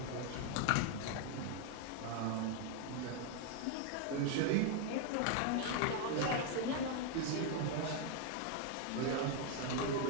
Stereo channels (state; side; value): different; both; correlation 0.01